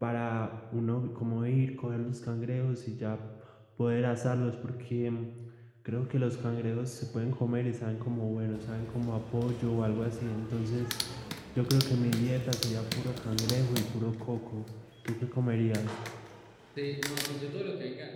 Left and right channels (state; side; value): identical; both; correlation 1.00